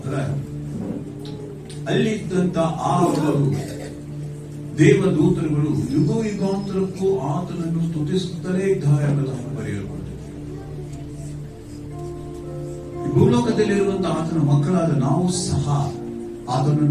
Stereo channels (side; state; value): both; identical; correlation 1.00